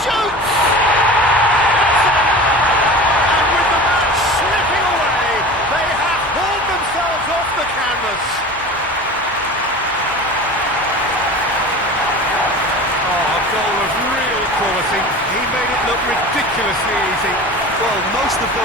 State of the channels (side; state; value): both; normal; correlation 0.36